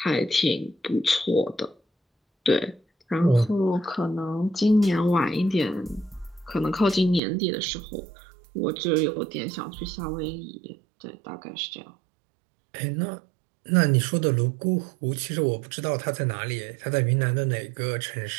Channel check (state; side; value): drops out; left; at 7.2 s